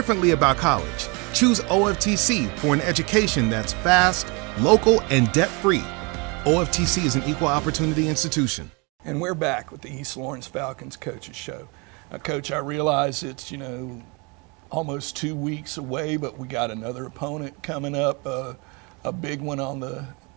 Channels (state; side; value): quieter; left; 30.1 dB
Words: about college. Choose OFTC for an education that's fast, local, and debt-free. OFTC is an equal opportunity institution. And we're back with the East Lawrence Falcons Coaches Show. Coach, I realize it's, you know, almost 2 weeks away, but we got another opponent coming up, a big one on the